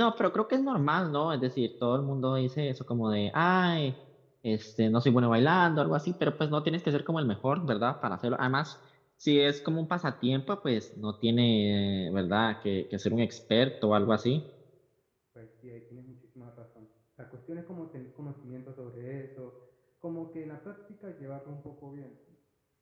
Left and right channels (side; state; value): both; identical; correlation 1.00